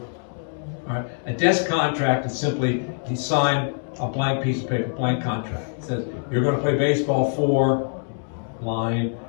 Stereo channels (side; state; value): right; silent; 63 dB below the other